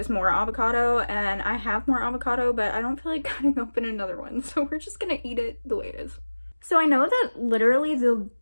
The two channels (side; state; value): both; inverted; correlation -1.00